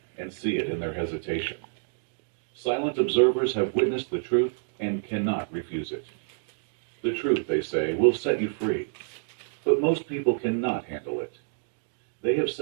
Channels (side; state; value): left; silent; digital silence